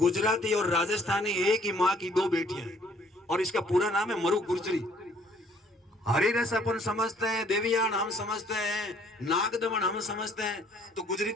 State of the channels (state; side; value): normal; both; correlation 0.61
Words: और राजस्थानी एक ही माँ की दो बेटियां हैं और इसका पूरा नाम है मरु गुर्जरी। हरिरस अपन समझते हैं, देवियान हम समझते हैं, नागदमन हम समझते हैं। तो